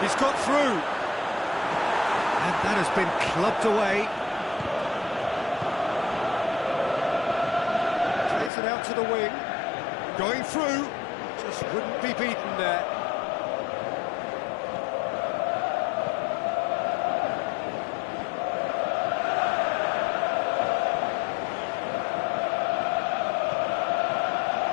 He's got through. And that has been clubbed away. Plays it out to the wing. Going through. Just wouldn't be beaten there.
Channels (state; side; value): drops out; right; at 8.5 s